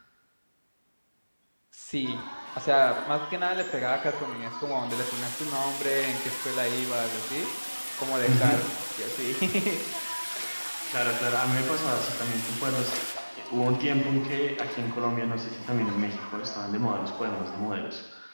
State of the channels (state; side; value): inverted; both; correlation -1.00